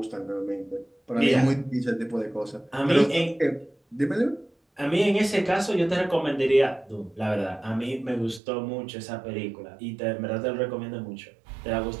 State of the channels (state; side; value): drops out; left; at 8.4 s